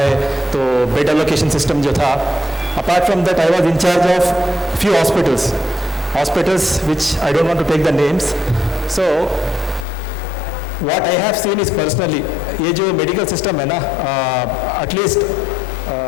है तो बेड एलोकेशन सिस्टम जो था. Apart from that I was in charge of few hospitals which I don't want to take the names. So what I have seen is personally, ये जो मेडिकल सिस्टम है ना, at least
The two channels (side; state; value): right; drops out; at 9.9 s